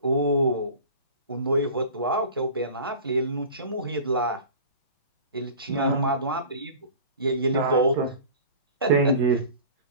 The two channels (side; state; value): both; inverted; correlation -0.39